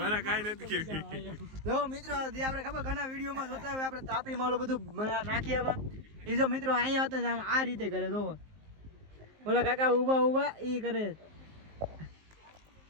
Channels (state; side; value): late; left; 19 ms